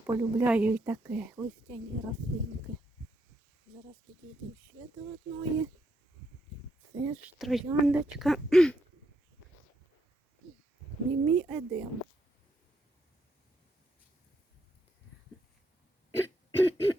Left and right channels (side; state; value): both; normal; correlation 0.77